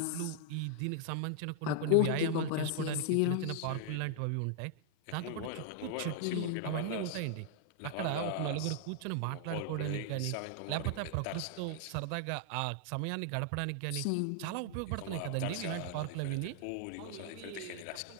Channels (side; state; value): both; different; correlation 0.00